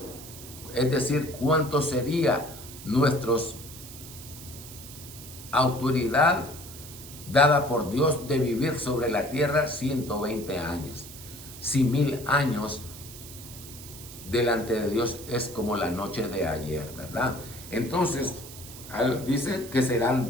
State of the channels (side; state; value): right; noise; hiss, 15 dB below the sound